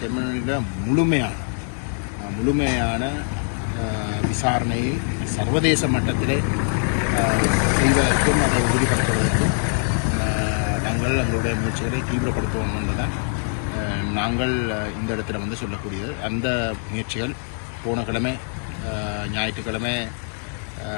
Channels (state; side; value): silent; right; 60 dB below the other